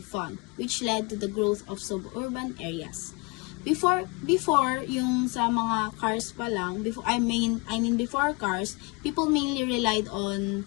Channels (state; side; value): quieter; right; 28.0 dB